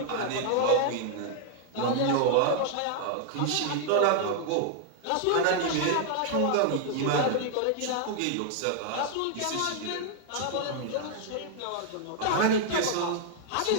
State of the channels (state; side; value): different; both; correlation 0.00